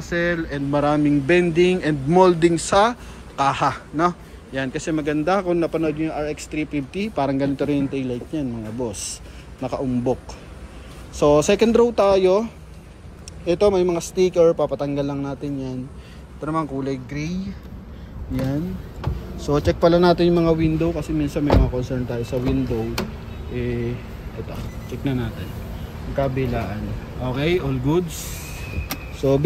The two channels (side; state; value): both; identical; correlation 1.00